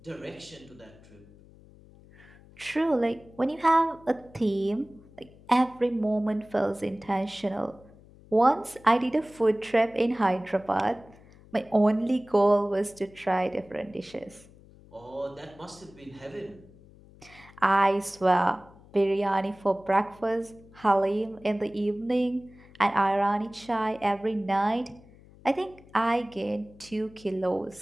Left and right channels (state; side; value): noise; left; hum, 24 dB below the sound